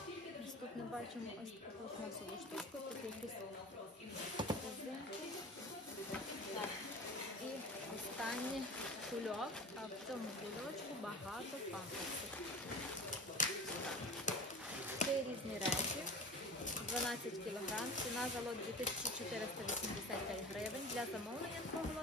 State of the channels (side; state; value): both; normal; correlation 0.35